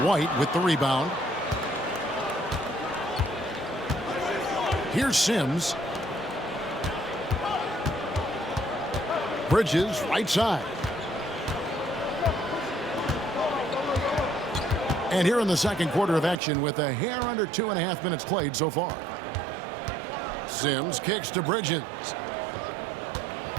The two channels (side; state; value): left; drops out; at 16.4 s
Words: with the rebound. Here's Sims. Bridges, right side. And here in the second quarter of action with a hair under 2.5 minutes played so far. Sims kicks to Bridges.